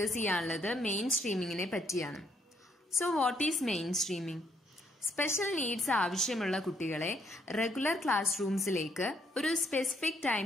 ചെയ്യാനുള്ളത് മെയിൻ സ്ട്രീമിങ്ങിനെ പറ്റിയാണ്. So what is mainstreaming? Special needs ആവശ്യമുള്ള കുട്ടികളെ റെഗുലർ ക്ലാസ് റൂംസിലേക്ക് ഒരു സ്പെസിഫിക് ടൈം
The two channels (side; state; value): both; normal; correlation 0.70